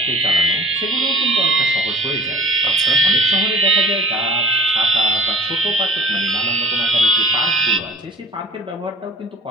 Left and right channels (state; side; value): normal; both; correlation 0.46